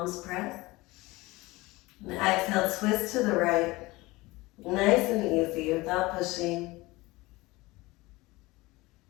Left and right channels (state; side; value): quieter; right; 21.3 dB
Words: press. And exhale, twist to the right. Nice and easy without pushing.